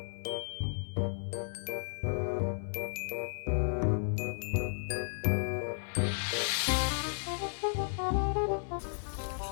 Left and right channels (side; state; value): right; silent; 55 dB below the other